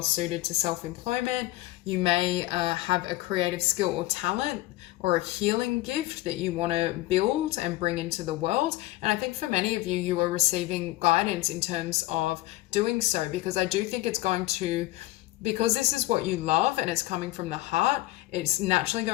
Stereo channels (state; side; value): quieter; right; 18.0 dB